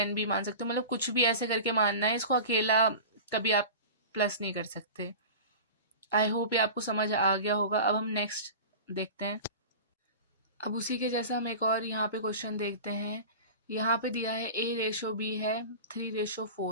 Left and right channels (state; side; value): inverted; both; correlation -0.34